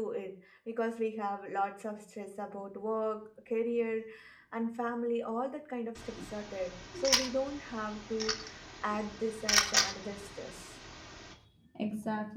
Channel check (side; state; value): both; identical; correlation 1.00